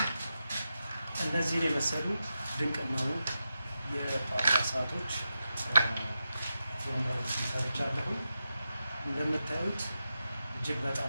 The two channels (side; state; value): both; inverted; correlation -0.90